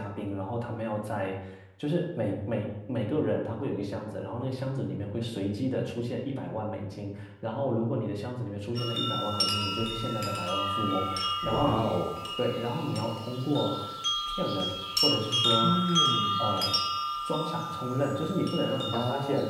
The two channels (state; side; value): identical; both; correlation 1.00